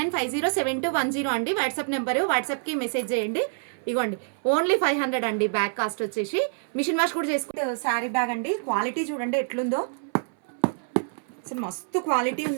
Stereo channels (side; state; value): left; silent; 61 dB below the other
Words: అండి వాట్సాప్ నెంబరు. వాట్సాప్కి మెసేజ్ చేయండి. ఇగోండి ఓన్లీ 500 అండి బ్యాగ్ కాస్ట్ వచ్చేసి. మిషన్ వాష్ కూడా చేసుకుంటే శారీ బ్యాగ్ అండి. క్వాలిటీ చూడండి ఎట్లుందో, అసలు మస్తు క్వాలిటీ